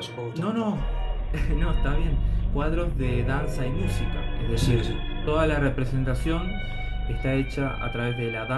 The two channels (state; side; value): identical; both; correlation 1.00